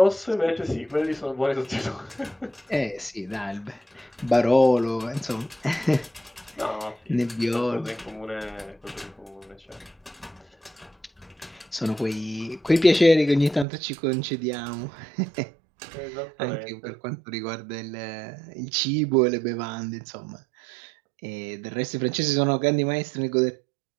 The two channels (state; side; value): drops out; left; at 13.7 s